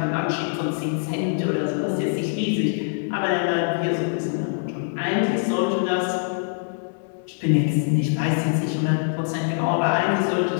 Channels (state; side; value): silent; right; digital silence